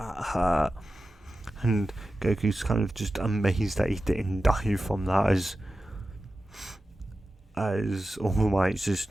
and Goku's kind of just amazed that he didn't die from that, as All Might's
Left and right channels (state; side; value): normal; both; correlation 0.93